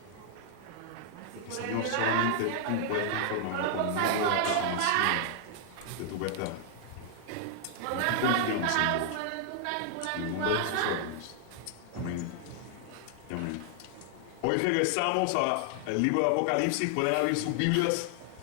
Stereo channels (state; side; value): different; both; correlation 0.00